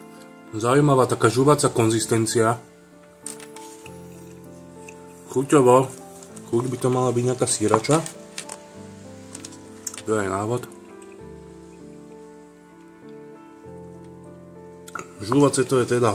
Zaujímavá taká žuvacia konzistencia. Chuťovo. Chuť by to mala byť nejaká sírača. To je aj návod. Žúvace to je teda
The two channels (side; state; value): both; identical; correlation 1.00